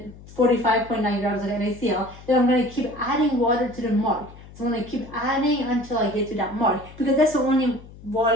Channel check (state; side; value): noise; left; hum, 19 dB below the sound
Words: grams of NaCl. Then I'm going to keep adding water to the mark. So I'm going to keep adding until I get to that mark, because that's the only